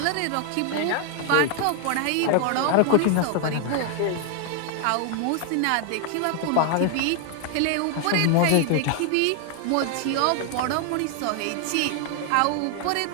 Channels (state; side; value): different; both; correlation 0.00